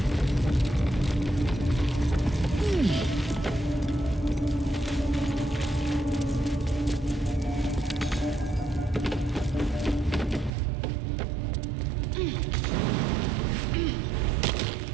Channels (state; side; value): drops out; left; at 10.5 s